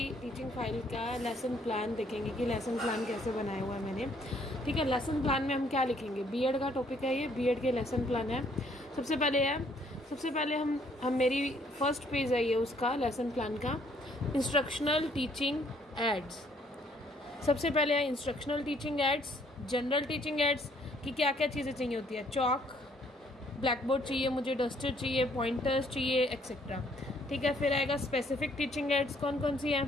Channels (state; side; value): normal; both; correlation 0.65